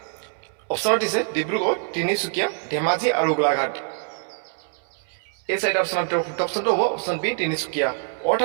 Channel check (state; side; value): silent; left; 62 dB below the other